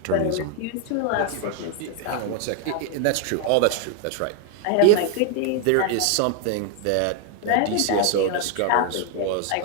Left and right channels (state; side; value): different; both; correlation 0.01